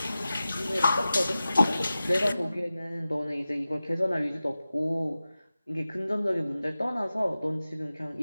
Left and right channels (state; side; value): inverted; both; correlation -0.95